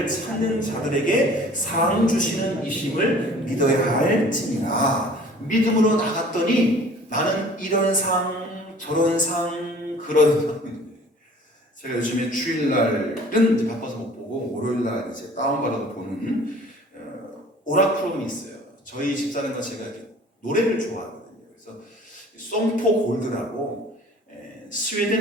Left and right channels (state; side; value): normal; both; correlation 0.49